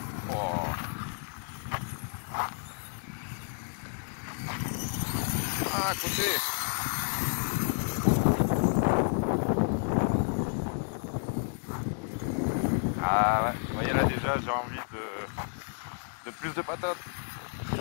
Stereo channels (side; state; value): right; silent; digital silence